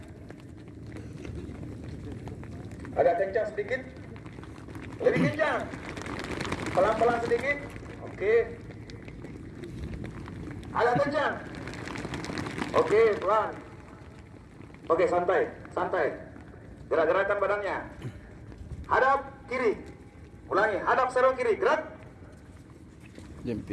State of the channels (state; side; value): identical; both; correlation 1.00